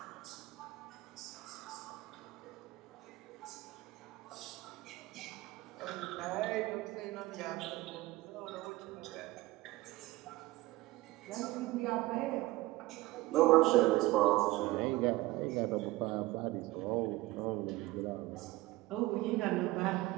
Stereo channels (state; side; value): quieter; left; 19.2 dB